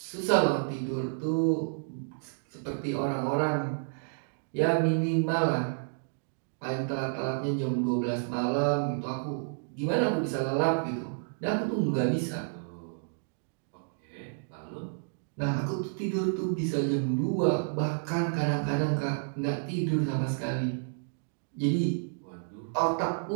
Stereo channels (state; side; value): silent; left; digital silence